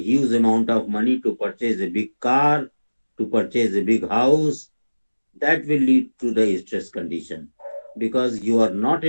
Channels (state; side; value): inverted; both; correlation -1.00